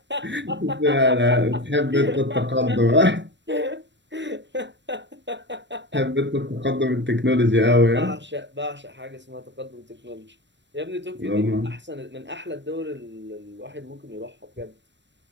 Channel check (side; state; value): left; late; 0.53 ms